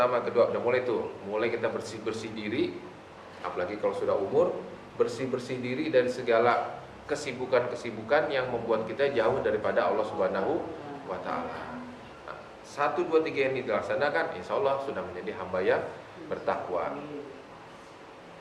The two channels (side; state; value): both; identical; correlation 1.00